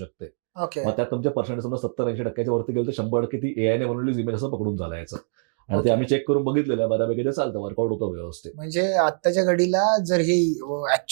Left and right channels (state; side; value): silent; left; digital silence